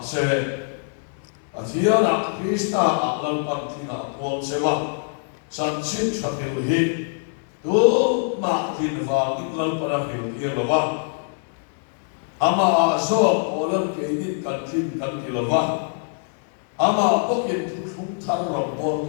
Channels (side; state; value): right; silent; 63 dB below the other